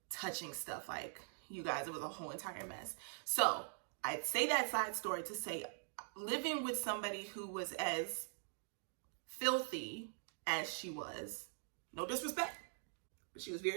touching stuff. Like, you guys, it was a whole entire mess. So I'd say that side story to say, living with somebody who was as filthy as she was, no disrespect, but she was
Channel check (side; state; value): left; silent; digital silence